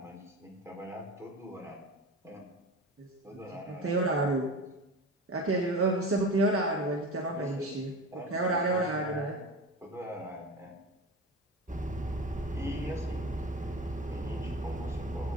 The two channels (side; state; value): both; normal; correlation 0.31